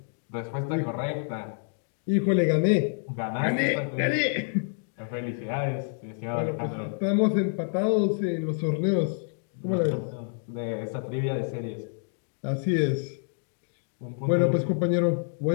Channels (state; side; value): silent; right; digital silence